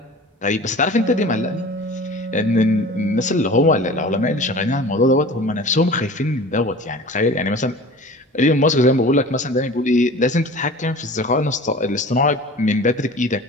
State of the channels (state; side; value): normal; both; correlation 0.40